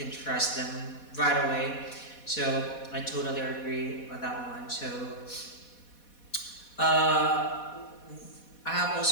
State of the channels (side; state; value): right; late; 4.1 ms